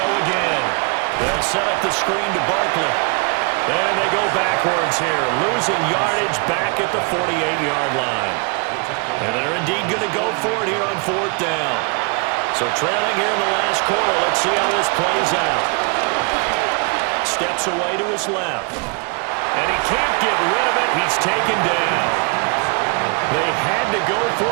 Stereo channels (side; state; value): left; quieter; 33.2 dB